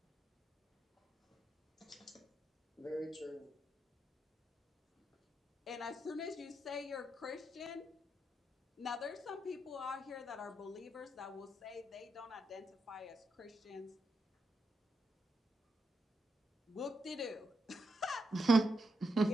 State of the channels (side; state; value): both; normal; correlation 0.82